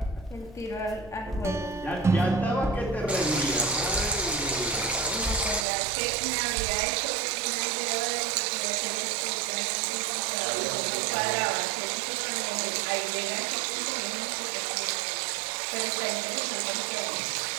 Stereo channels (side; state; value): left; drops out; at 5.7 s